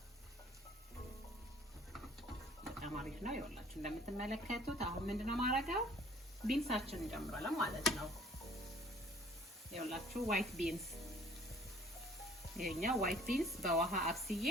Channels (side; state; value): both; normal; correlation 0.55